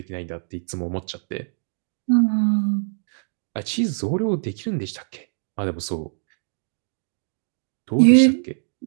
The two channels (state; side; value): silent; left; digital silence